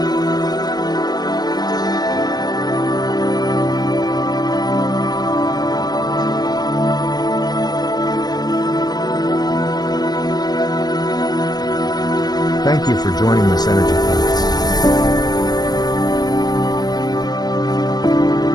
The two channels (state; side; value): late; right; 0.19 ms